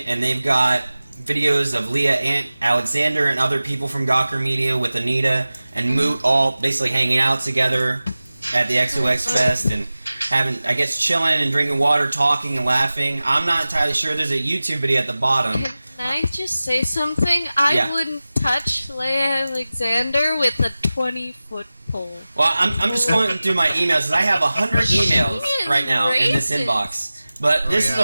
and they've got videos of Leah Alexander and other people from Gawker Media with Anita and Moot all basically hanging out together at the XOX Fest and having, I guess, chilling and drinking water, talking and laughing. I'm not entirely sure. There's a YouTube video at the bottom. Can I just say something? I wouldn't touch Leia Alexander with a 20-foot pole. Well, I'm just going through my emails because I have 100 emails right now in this inbox. But this is the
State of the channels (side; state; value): both; inverted; correlation -0.97